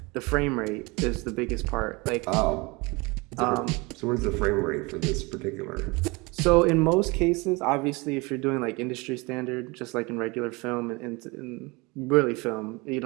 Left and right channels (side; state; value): left; quieter; 25.9 dB